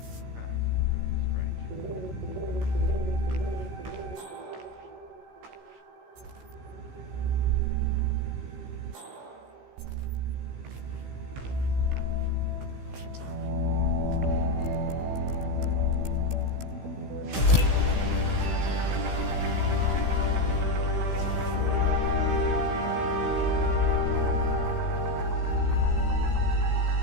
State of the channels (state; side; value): late; left; 16 ms